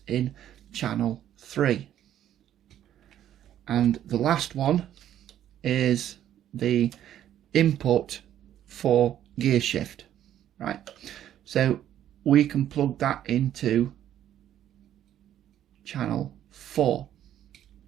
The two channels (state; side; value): quieter; left; 11.2 dB